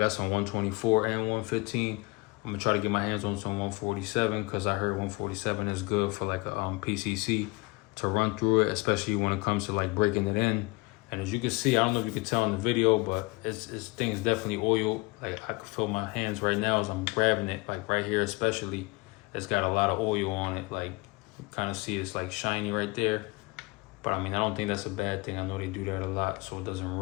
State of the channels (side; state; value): right; quieter; 24.7 dB